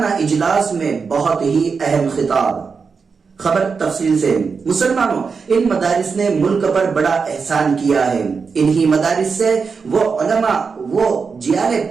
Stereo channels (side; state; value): left; quieter; 5.3 dB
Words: اجلاس میں بہت ہی اہم خطاب۔ خبر تفصیل سے۔ مسلمانوں، ان مدارس نے ملک پر بڑا احسان کیا ہے۔ انہی مدارس سے وہ علماء، وہ جیالے